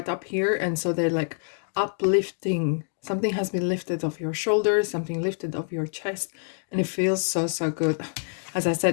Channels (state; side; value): silent; right; 57 dB below the other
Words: up here, and so they're like uplifting. Something has been lifted off your shoulders, something lifted off your chest, and it feels so good. As I